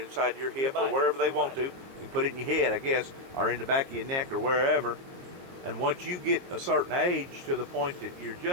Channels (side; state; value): left; late; 22 ms